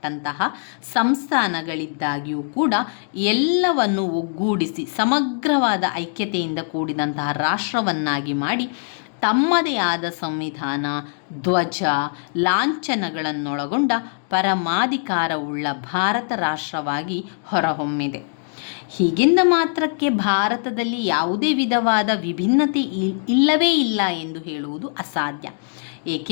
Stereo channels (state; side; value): silent; right; digital silence